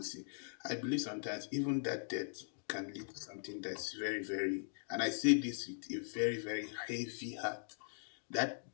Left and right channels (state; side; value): silent; right; digital silence